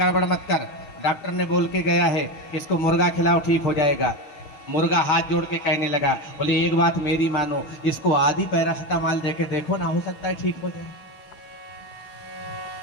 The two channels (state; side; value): late; right; 6.7 ms